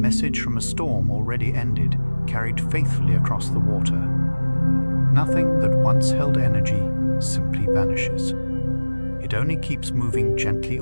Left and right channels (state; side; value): inverted; both; correlation -1.00